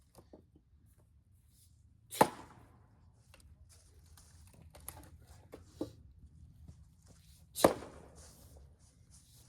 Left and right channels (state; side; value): identical; both; correlation 1.00